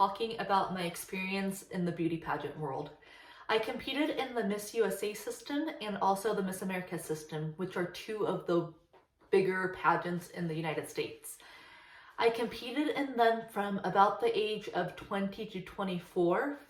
about my experience in the beauty pageant world. I competed in the Miss USA system and also the Miss America system, which are two of the bigger pageants in the United States. I competed in them from about the age of 20 to 24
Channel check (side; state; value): both; identical; correlation 1.00